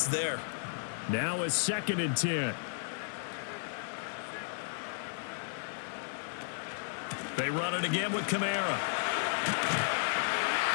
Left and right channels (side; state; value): right; silent; 55 dB below the other